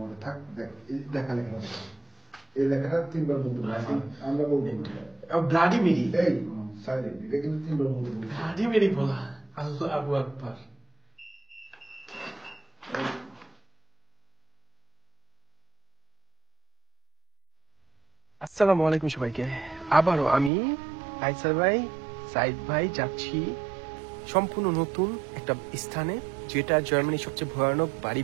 থাক। দেখ দেখা লেখা, এই লেখাটা 3 বার বলতে বলছি আমরা, বলবো ব্লাডি মেরি। এই সাইলেন্ট, এটা কিন্তু 3 বার বলতে বলছি। ব্লাডি মেরি বলা, আল্লাহু আকবার। আসসালামু আলাইকুম সবাইকে। আবারও আমি আইসার ভাই, সাইদ ভাই যাচ্ছি সম্পূর্ণ নতুন একটা স্থানে, যেটা জার্মানির সবচেয়ে ভয়ানক বাড়ি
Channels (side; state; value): left; drops out; at 20.5 s